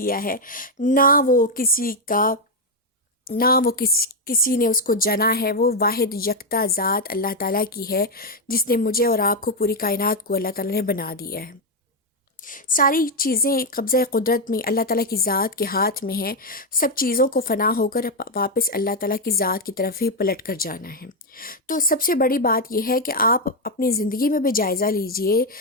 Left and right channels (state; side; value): normal; both; correlation 0.03